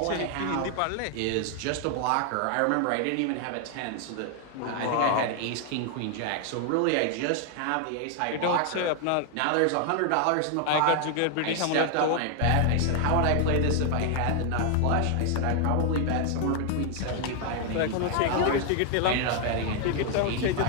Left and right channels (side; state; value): both; different; correlation 0.00